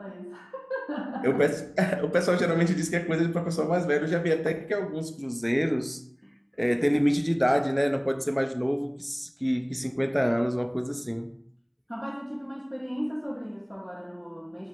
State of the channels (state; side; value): identical; both; correlation 1.00